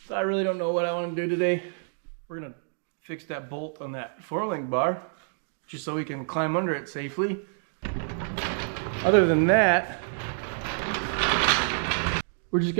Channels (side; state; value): left; silent; digital silence